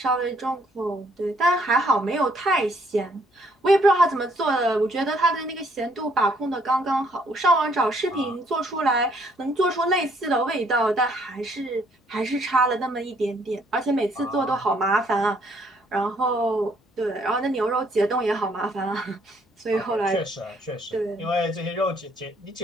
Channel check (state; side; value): normal; both; correlation 0.66